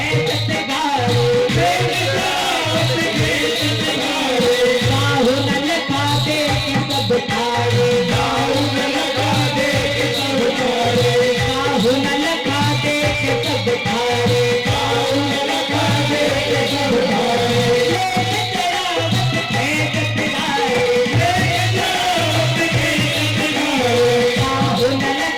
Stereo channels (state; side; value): identical; both; correlation 1.00